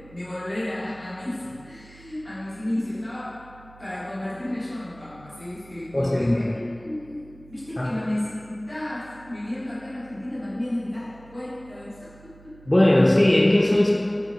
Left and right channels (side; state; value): right; noise; hum, 23 dB below the sound